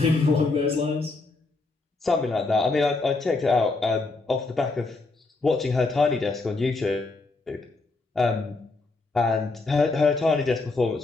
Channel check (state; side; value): quieter; right; 3.5 dB